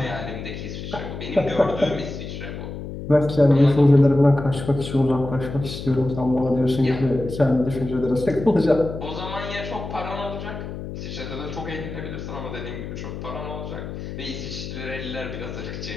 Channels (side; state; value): left; noise; hum, 8 dB below the sound